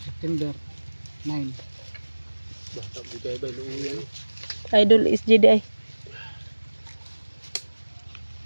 9. Idol is Jedi.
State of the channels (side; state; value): both; inverted; correlation -1.00